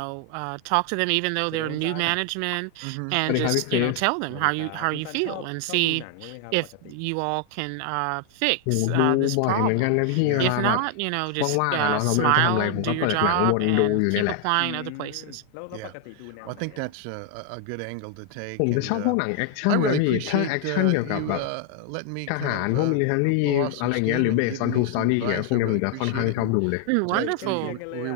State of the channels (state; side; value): different; both; correlation 0.00